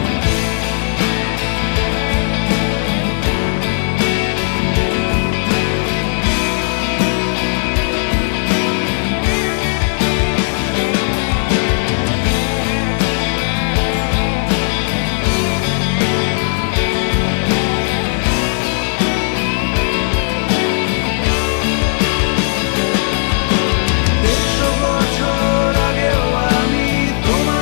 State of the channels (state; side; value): silent; right; digital silence